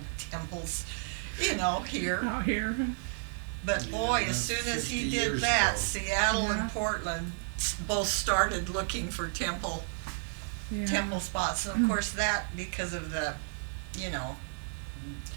temples, here. Out here. But Yeah, boy, as that's soon as 50 he did years that, ago. Seattle Yeah. and Portland both started looking for temple Yeah. spots. And of course that, because of the,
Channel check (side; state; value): left; silent; digital silence